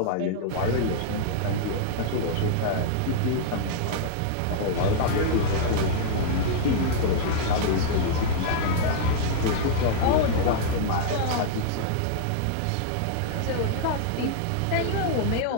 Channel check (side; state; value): both; different; correlation -0.02